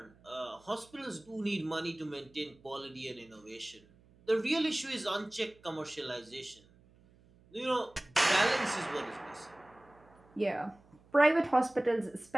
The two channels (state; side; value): noise; right; hum, 28 dB below the sound